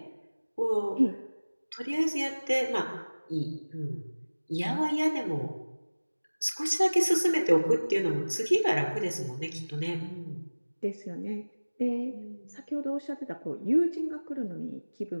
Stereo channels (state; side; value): inverted; both; correlation -1.00